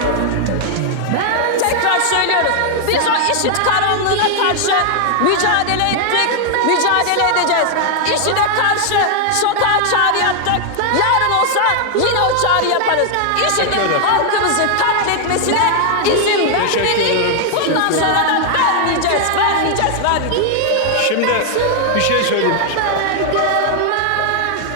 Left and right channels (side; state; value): both; different; correlation 0.00